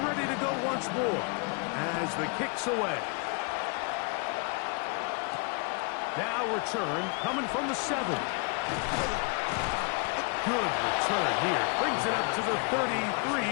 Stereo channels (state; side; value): quieter; right; 35.4 dB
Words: ready to go once more as the kick's away. Now return coming from the 7. Good return here. Brings it up to the